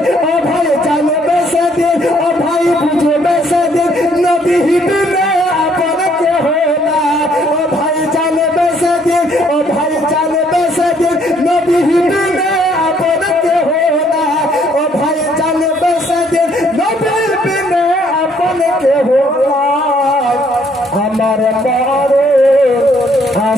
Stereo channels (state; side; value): normal; both; correlation 0.66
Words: ও ভাই জানবে সেদিন, ও ভাই বুঝবে সেদিন নবী বিনে আপন কেহ না, ও ভাই জানবে সেদিন, ও ভাই জানবে সেদিন নবী বিনে আপন কেহ না, ও ভাই জানবে সেদিন নবী বিনে আপন কেহ না, আমার মরণ